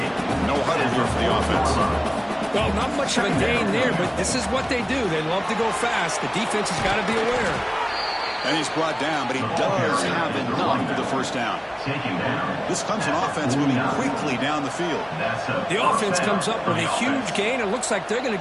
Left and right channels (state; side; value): identical; both; correlation 1.00